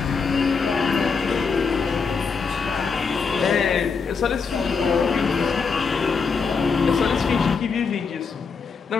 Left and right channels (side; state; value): right; quieter; 5.3 dB